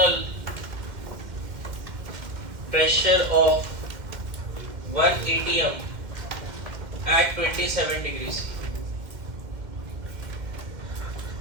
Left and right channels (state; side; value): late; left; 2.1 ms